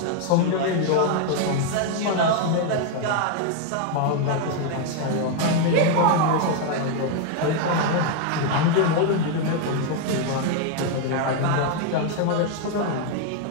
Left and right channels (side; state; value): both; different; correlation 0.00